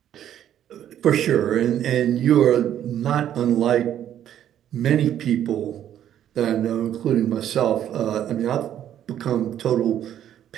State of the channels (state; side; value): quieter; left; 10.7 dB